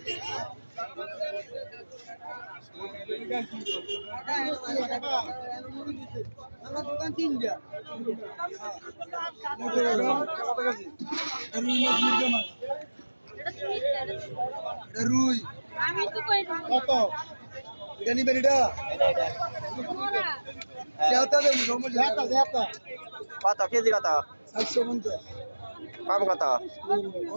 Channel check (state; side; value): inverted; both; correlation -1.00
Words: আমার দোকান 3 দিয়া। রুই আমি তো কই কত জানি বেরিডা যাতা দে যাতা কত কেজি কত? 750 কম কত?